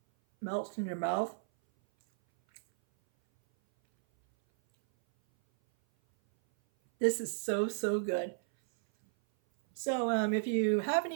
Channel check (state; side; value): silent; left; 56 dB below the other